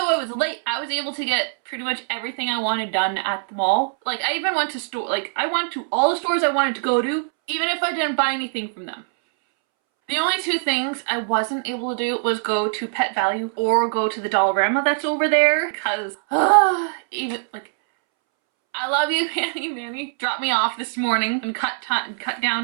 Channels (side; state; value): left; silent; 64 dB below the other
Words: I was late, I was able to get pretty much everything I wanted done at the mall. Like, I even went to I went to all the stores I wanted to go to, even if I didn't buy anything from them. The only two things I wasn't able to do was go to Pet Value or go to the Dollarama that's over there, because, even, like, I love you, Manny dropped me off this morning and cut